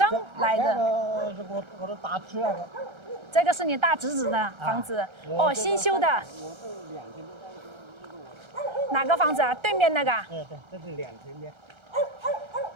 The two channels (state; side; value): late; left; 1.3 ms